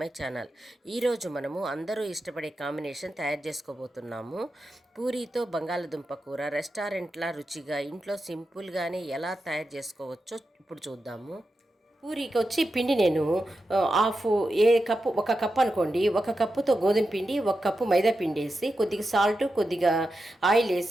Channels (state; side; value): normal; both; correlation 0.89